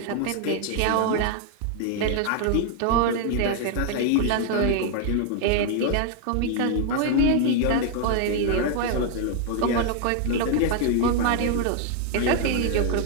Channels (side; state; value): both; different; correlation 0.00